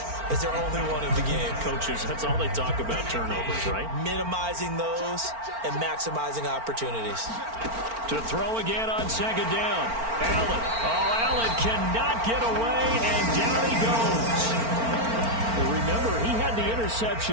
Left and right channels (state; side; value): late; left; 4.4 ms